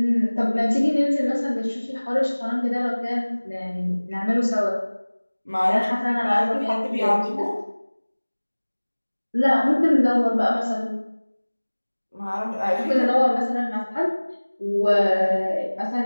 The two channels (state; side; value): inverted; both; correlation -1.00